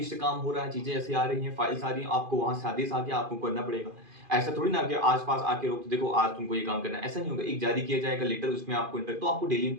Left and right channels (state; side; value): late; left; 2.5 ms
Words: से काम हो रहा है, चीजें ऐसे आ रही हैं, फाइल्स आ रही हैं, आपको वहां से आदेश आ गया, आपको करना पड़ेगा। ऐसा थोड़ी ना कि आसपास आके रोक देखो आज तुमको ये काम करना है, ऐसा नहीं होगा। एक जारी किया जाएगा लेटर, उसमें आपको तो आपको डेली